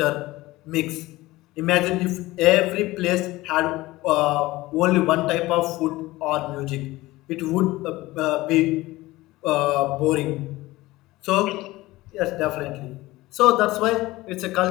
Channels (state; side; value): quieter; right; 18.9 dB